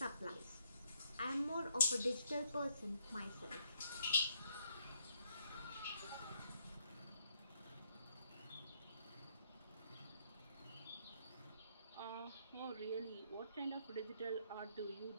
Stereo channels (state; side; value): inverted; both; correlation -0.71